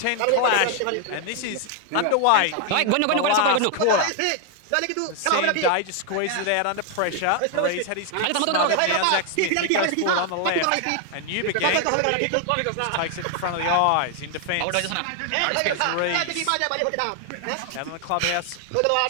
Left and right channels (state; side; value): different; both; correlation 0.00